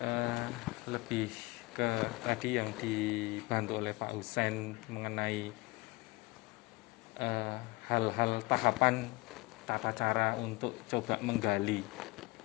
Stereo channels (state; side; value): quieter; right; 23.8 dB